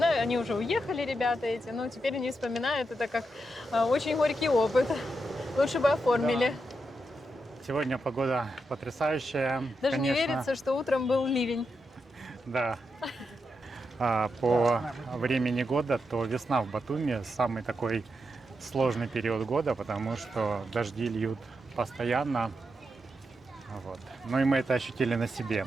они уже уехали, ребята эти, но теперь они вспоминают это как очень горький опыт. Лучше бы оформили. Да. Сегодня погода потрясающая. Даже конечно. не верится, что утром был ливень. Да. По времени года, то весна в Батуми самый такой сложный период года, потому что дожди льют постоянно. Вот. Ну и мы это ощутили на себе,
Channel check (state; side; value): normal; both; correlation 0.85